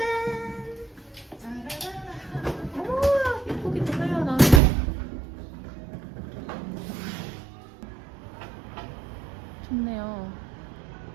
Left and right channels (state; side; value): drops out; left; at 4.6 s